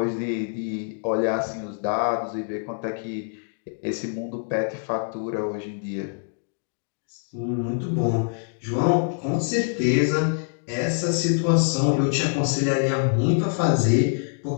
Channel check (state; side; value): silent; right; digital silence